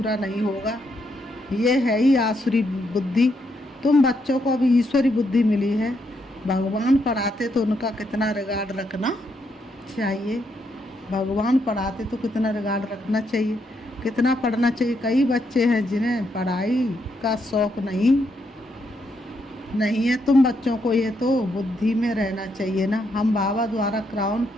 नहीं होगा। ये है ही आसुरी बुद्धि। तुम बच्चों को अभी ईश्वरी बुद्धि मिली है। भगवान पढ़ाते तो उनका कितना रिगार्ड रखना चाहिए। भगवान पढ़ाते तो कितना रिगार्ड रखना चाहिए, कितना पढ़ना चाहिए। कई बच्चे हैं जिन्हें पढ़ाई का शौक नहीं है। तुम बच्चों को ये तो बुद्धि में रहना चाहिए ना। हम बाबा द्वारा क्राउन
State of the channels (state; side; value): normal; both; correlation 0.77